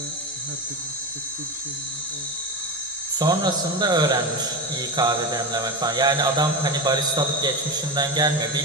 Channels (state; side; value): normal; both; correlation 0.20